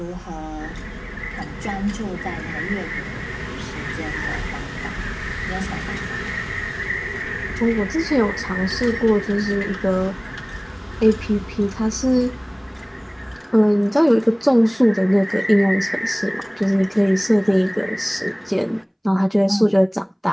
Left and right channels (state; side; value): identical; both; correlation 1.00